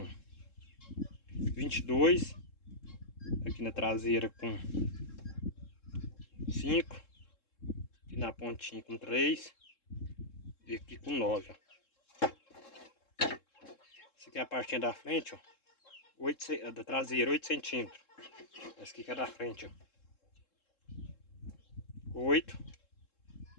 22. Aqui na traseira com 5. Aqui na pontinha com 3. E aqui com 9. Ó. Essa aqui é a partinha da frente, ó. 8, da traseira, 8 centímetros. Essa aqui que é da frente, ó. 8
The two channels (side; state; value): right; late; 3.7 ms